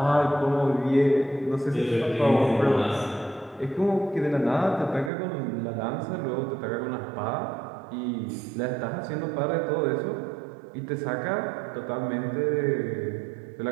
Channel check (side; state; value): left; drops out; at 5.1 s